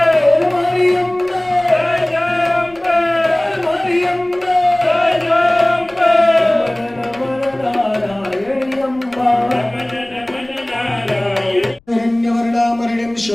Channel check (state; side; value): noise; left; rumble, 30 dB below the sound